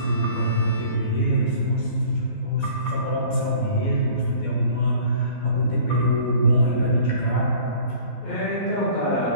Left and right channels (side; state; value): right; late; 12 ms